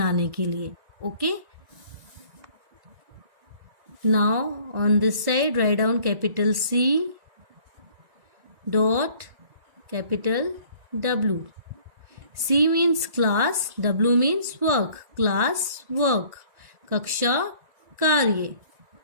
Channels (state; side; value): late; left; 1.9 ms